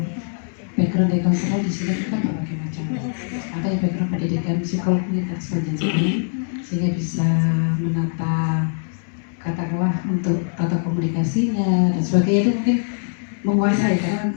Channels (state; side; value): silent; right; digital silence